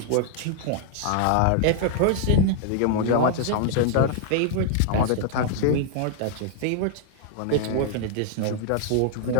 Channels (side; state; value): both; different; correlation -0.01